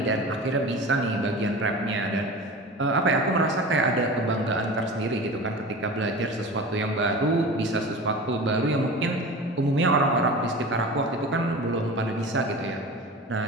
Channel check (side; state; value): both; normal; correlation 0.34